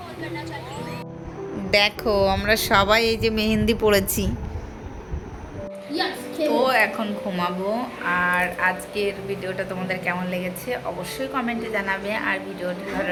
দেখো আমরা সবাই এই যে মেহেন্দি পড়েছি, তো এখন ঘুমাবো। আর আজকের ভিডিওটা তোমাদের কেমন লেগেছে অবশ্যই কমেন্টে জানাবে, আর ভিডিওটা ভালো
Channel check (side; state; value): both; identical; correlation 1.00